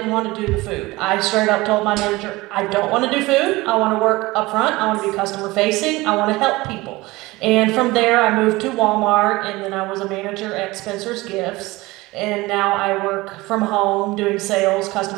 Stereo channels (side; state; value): left; quieter; 20.8 dB